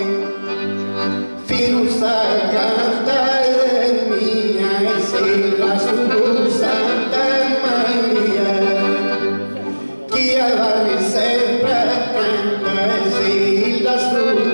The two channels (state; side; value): inverted; both; correlation -1.00